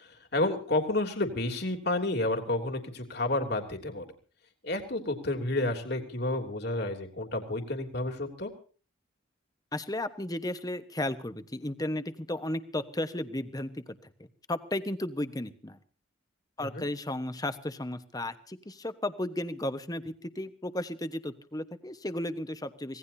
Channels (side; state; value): both; normal; correlation 0.33